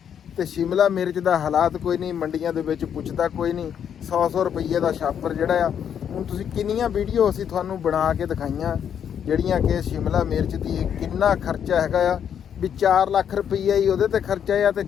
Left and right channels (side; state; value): right; quieter; 8.5 dB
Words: ਤੇ ਸ਼ਿਮਲਾ ਮਿਰਚ ਦਾ ਹਾਲਾਤ ਕੋਈ ਨਹੀਂ, ਮੰਡੀਆਂ ਦੇ ਵਿੱਚ ਪੁੱਛਦਾ ਕੋਈ ਨਹੀਂ। 100 ਰੁਪਏ ਦਾ ਛਾਪਰ ਜਿਹੜਾ ਆ, ਹੁਣ ਤੁਸੀਂ ਕਿੰਨੀਆਂ ਵੀਡੀਓ ਅਸੀਂ ਤੁਹਾਨੂੰ ਬਣਾ ਕੇ ਦਿਖਾਈਆਂ ਜਿਹੜੀਆਂ ਕਿ ਸ਼ਿਮਲਾ ਮਿਰਚ ਦੀ ਕਿੰਨਾ ਖਰਚਾ ਹੈਗਾ ਆ, ਵੀ 4 ਲੱਖ ਰੁਪਈਆ ਹੀ ਉਹਦੇ ਤੇ ਖਰਚਾ ਆ ਤੇ